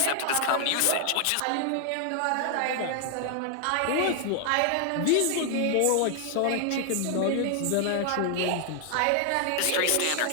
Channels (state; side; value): different; both; correlation 0.00